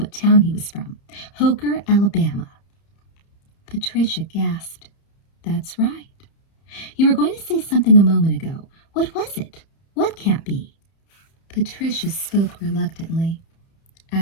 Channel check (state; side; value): late; right; 30 ms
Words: town he was from. Hooker, Alabama. Patricia gasped. That's right. You were going to say something a moment ago. What was it? What can't be? Patricia spoke reluctantly.